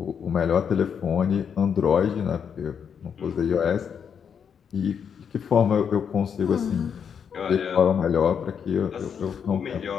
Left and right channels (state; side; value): quieter; right; 7.3 dB